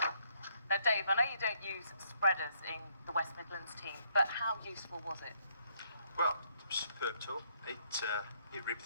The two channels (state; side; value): inverted; both; correlation -0.70